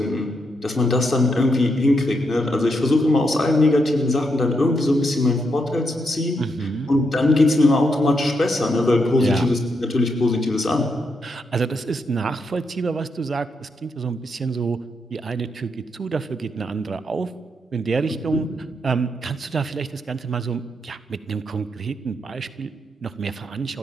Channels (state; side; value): normal; both; correlation 0.80